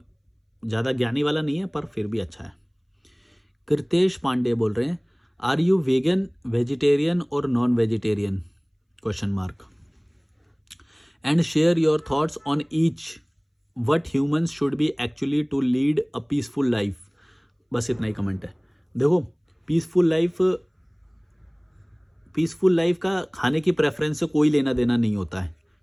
ज़्यादा ज्ञानी वाला नहीं है, पर फिर भी अच्छा है। कृतेश पांडे बोल रहे हैं, आर यू वेगन, वेजिटेरियन और non vegetarian, question mark, and share your thoughts on each, what humans should be actually to lead a peaceful life. बस इतना ही कमेंट है। देखो, पीसफुल लाइफ का खाने की प्रेफरेंस से कोई लेना देना नहीं होता है।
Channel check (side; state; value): both; identical; correlation 1.00